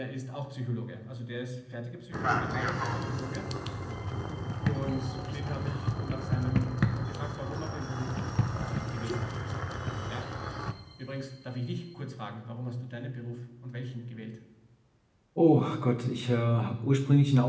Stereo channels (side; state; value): both; identical; correlation 1.00